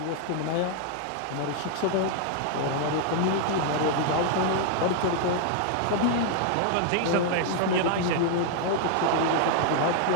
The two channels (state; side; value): different; both; correlation 0.00